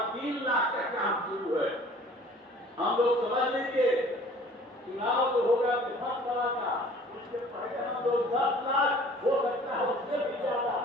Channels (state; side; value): normal; both; correlation 0.50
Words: 3 लाख का काम शुरू है। हम लोग समझ लीजिए चुनाव जो होगा विधानसभा का, उससे पहले हम लोग 10 लाख हो सकता है उससे भी ज्यादा